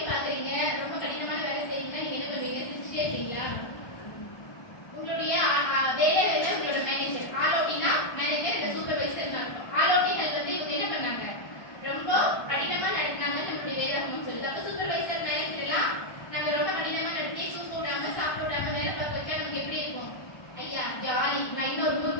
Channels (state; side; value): late; right; 1.2 ms